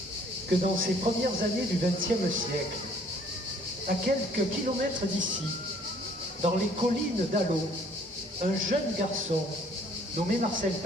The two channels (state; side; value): normal; both; correlation 0.59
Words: que dans ces premières années du XXe siècle, à quelques kilomètres d'ici, dans les collines d'Allot, un jeune garçon nommé Marcel